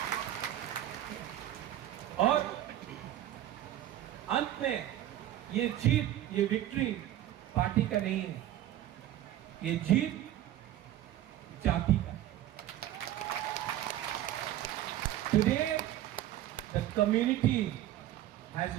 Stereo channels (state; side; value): quieter; left; 12.8 dB